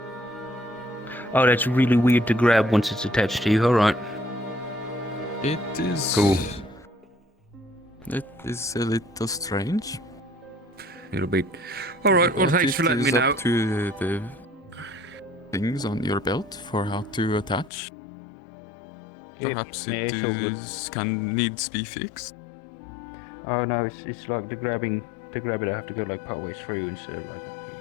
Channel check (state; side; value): drops out; right; at 17.7 s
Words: Oh, that's really weird to grab once it's attached to you. All right. It is. Cool. It is a little strange. It'll be. All right. Well, But thanks for letting me it is know. up to the things on your belt for how to attach. Yep, Perhaps yeah, it it's all good. needs be fixed. Oh no, it's like the grabbing. To grab it, I have to go like partway through instead of like.